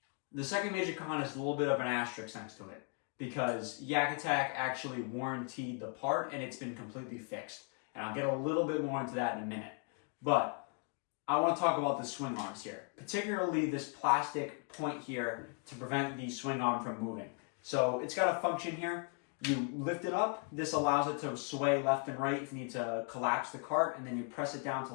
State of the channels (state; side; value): quieter; right; 37.8 dB